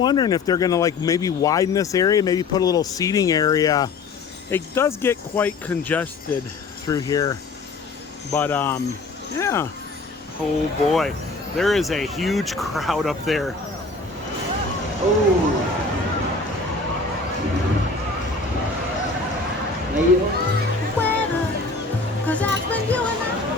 if they're gonna maybe widen this area, maybe put a little seating area. It does get quite congested through here. But yeah. Oh boy, there is a huge crowd up there. Oh.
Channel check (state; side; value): quieter; right; 3.9 dB